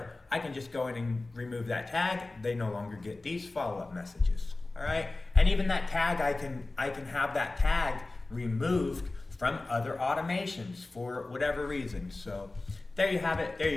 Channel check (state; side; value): quieter; right; 3.1 dB